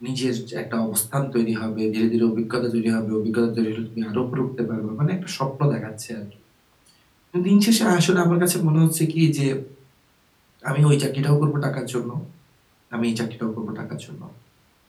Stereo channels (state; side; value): identical; both; correlation 1.00